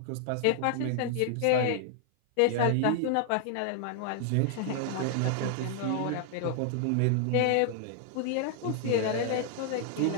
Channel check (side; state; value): both; different; correlation 0.00